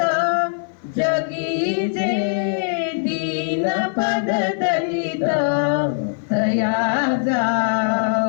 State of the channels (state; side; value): silent; right; 57 dB below the other